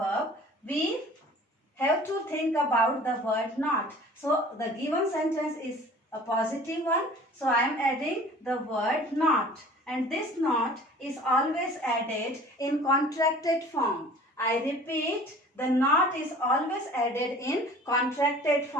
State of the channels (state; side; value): normal; both; correlation 0.46